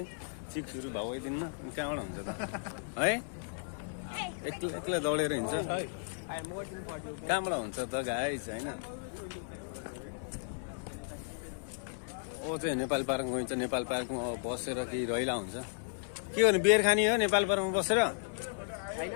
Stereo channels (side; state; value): right; silent; 55 dB below the other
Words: चिक्सहरू भाउ दिनमा कहाँबाट हुन्छ त है एक्लै दौडेर हिँड्छ कहाँबाट हुन्छ त गाइस होइन ओ चाहिँ नेपाल पार्कमा गइन्छ नेपाल पार्कमा बसेर केही रहिला हुन्छ के गर्ने बियर खाने हो नेपाल पार्कमा बसेर